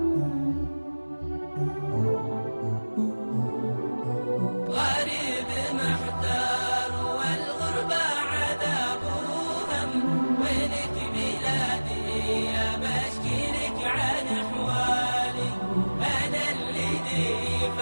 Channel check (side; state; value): both; inverted; correlation -1.00